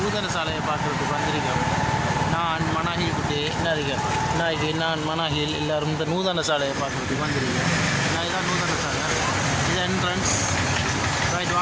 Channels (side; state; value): both; identical; correlation 1.00